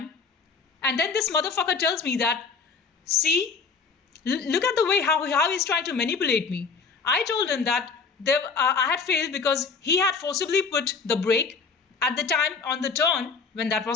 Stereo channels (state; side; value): quieter; right; 5.1 dB